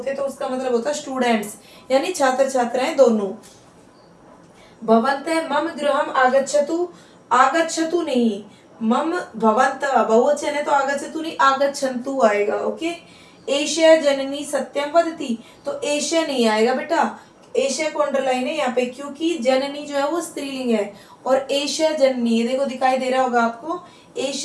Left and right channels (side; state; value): both; identical; correlation 1.00